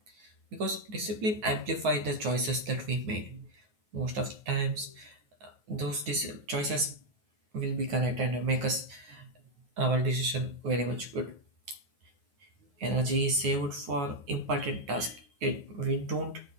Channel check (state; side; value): late; left; 9.4 ms